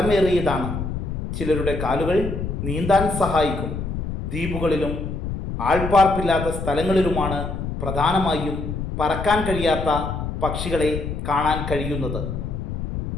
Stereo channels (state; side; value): noise; left; rumble, 5 dB below the sound